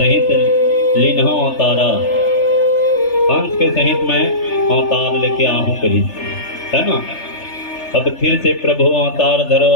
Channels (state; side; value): late; right; 3.3 ms